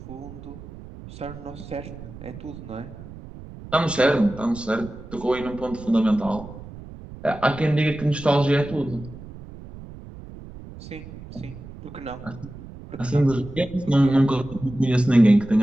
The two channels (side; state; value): right; noise; rumble, 15 dB below the sound